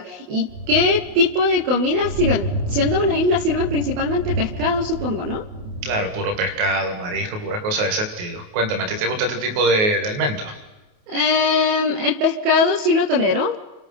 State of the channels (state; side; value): late; left; 28 ms